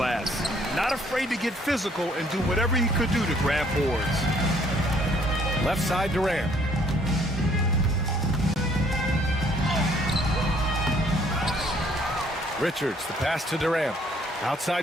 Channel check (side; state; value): both; normal; correlation 0.63